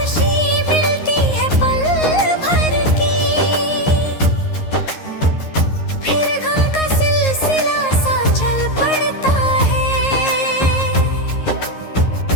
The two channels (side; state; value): right; late; 11 ms